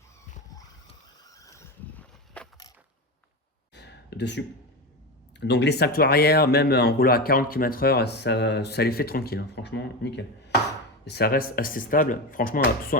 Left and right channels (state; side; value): normal; both; correlation 0.20